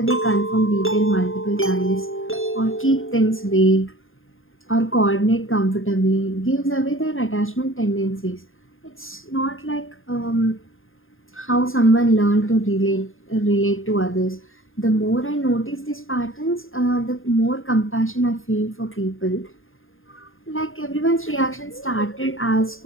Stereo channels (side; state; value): right; late; 0.59 ms